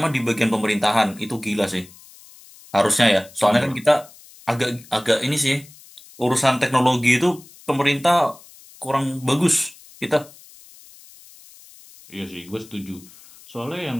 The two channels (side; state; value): left; noise; hiss, 23 dB below the sound